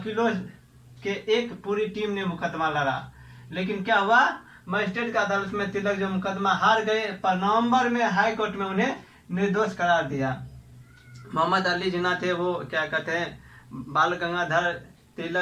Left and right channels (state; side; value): identical; both; correlation 1.00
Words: के एक पूरी टीम ने मुकदमा लड़ा, लेकिन क्या हुआ, मजिस्ट्रेट की अदालत में तिलक जो मुकदमा हार गए, पर नवंबर में हाई कोर्ट में उन्हें निर्दोष करार दिया। मोहम्मद अली जिन्ना थे, वो क्या कहते हैं बाल गंगाधर